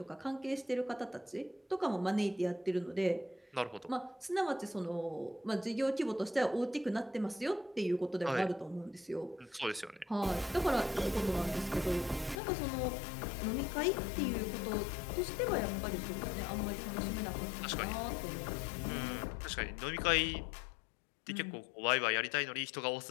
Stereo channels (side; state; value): right; drops out; at 12.4 s